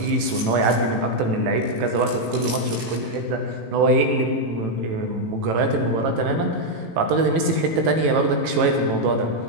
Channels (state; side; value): late; left; 18 ms